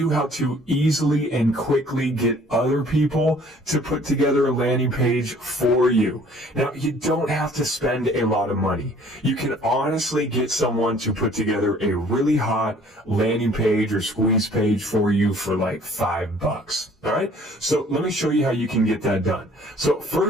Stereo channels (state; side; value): normal; both; correlation 0.55